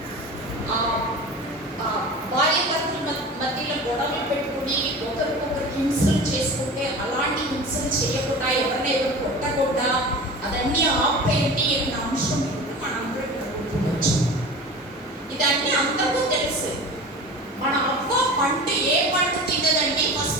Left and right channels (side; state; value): both; normal; correlation 0.35